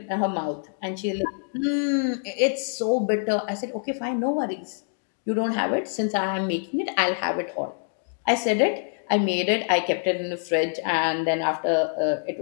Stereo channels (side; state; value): right; silent; digital silence